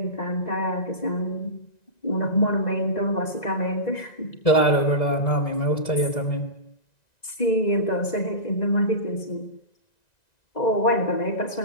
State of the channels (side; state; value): right; late; 2.0 ms